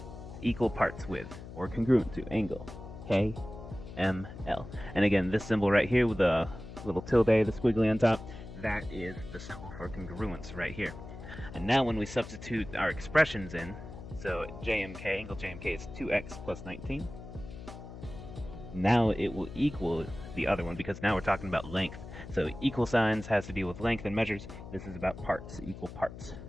equal parts with, or congruent to, angle KML. And again, this symbol right here with the little tilde, the squiggly on top, that is the symbol for congruence right here. And now when we substitute our expressions in, so JMK, angle JMK is 2x plus 19. Now it will equal the other one because now we're talking about length. So equal signs has to deal with length and measures. This is about parts, equal parts.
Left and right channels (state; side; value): noise; left; hum, 13 dB below the sound